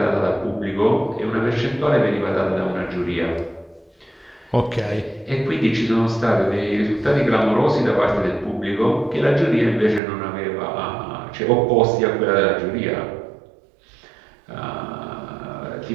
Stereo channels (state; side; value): drops out; left; at 10.0 s